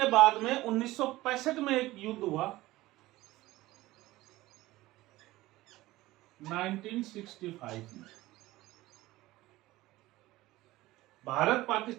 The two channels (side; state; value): left; quieter; 17.8 dB